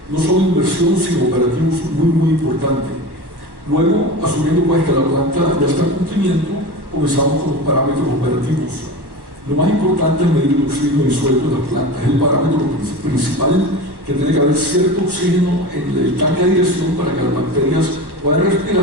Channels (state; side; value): late; left; 1.1 ms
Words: no solo inversión, sino operativos muy importante. Luego, asumiendo pues que la planta ya está en cumplimiento, comenzamos con los parámetros operativos. Lo más importante es medir el oxígeno disuelto de las plantas. Es el parámetro principal, que tiene que haber cierto oxígeno en el tanque de aireación para que las bacterias puedan